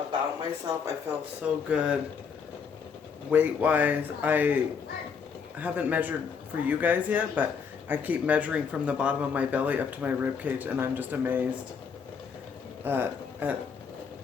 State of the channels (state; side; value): quieter; right; 6.2 dB